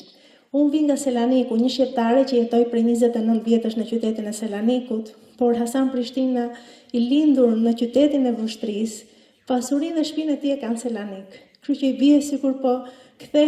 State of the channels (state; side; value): identical; both; correlation 1.00